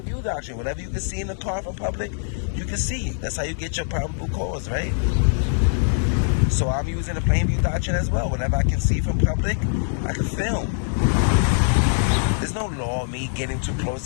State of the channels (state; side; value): silent; right; 63 dB below the other